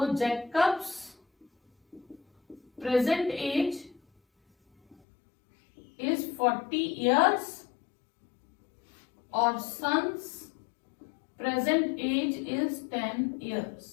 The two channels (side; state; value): right; drops out; at 5.0 s